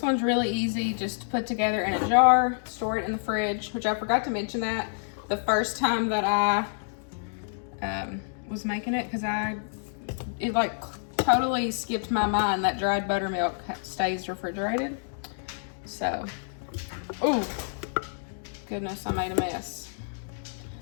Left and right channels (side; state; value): right; silent; digital silence